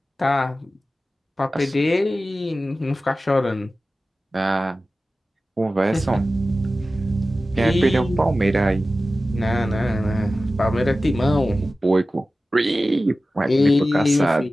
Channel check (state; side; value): normal; both; correlation 0.95